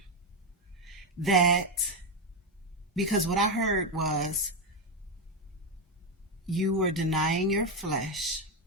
that, because what I heard was, you were denying your flesh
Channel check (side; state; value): both; normal; correlation 0.08